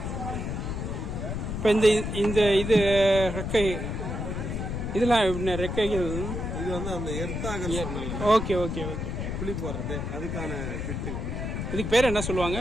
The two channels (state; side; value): noise; left; rumble, 3 dB below the sound